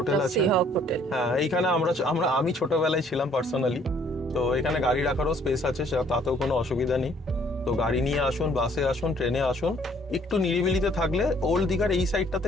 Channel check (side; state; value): both; normal; correlation 0.61